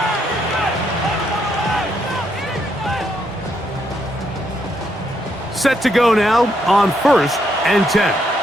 set to go now on 1st and 10.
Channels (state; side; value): normal; both; correlation 0.75